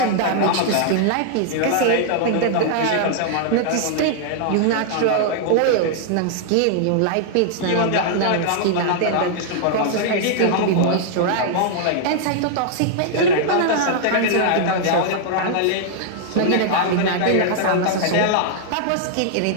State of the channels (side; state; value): both; different; correlation -0.01